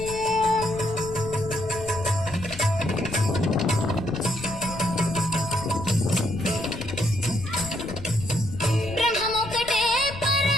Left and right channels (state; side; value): noise; left; rumble, 12 dB below the sound